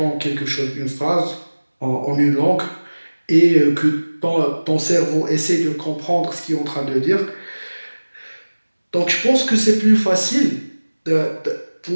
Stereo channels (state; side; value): inverted; both; correlation -1.00